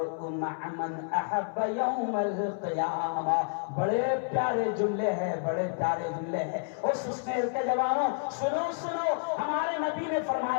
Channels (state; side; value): silent; right; 58 dB below the other